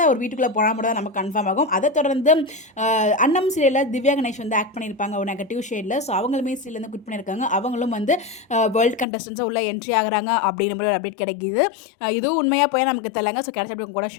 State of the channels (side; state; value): right; drops out; at 9.1 s